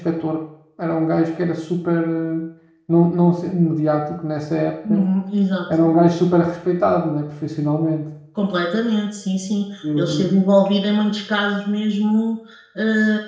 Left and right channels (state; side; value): identical; both; correlation 1.00